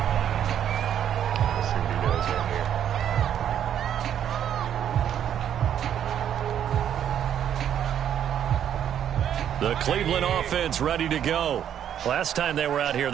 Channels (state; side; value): quieter; left; 9.7 dB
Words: The Cleveland offense ready to go. Last time they were out here,